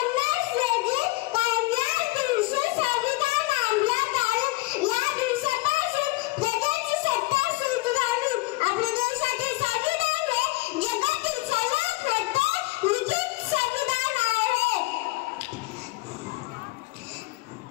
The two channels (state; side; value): quieter; right; 21.9 dB